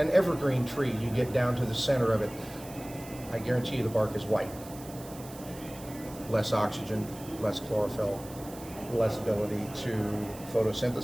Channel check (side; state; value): right; noise; hiss, 17 dB below the sound